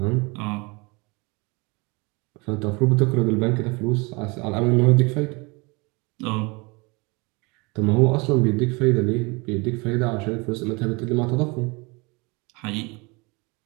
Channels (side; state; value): left; quieter; 27.7 dB